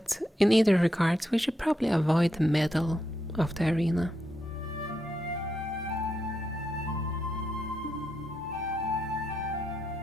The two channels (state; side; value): normal; both; correlation 0.82